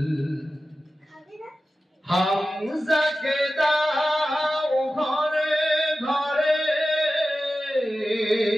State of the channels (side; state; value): both; normal; correlation 0.94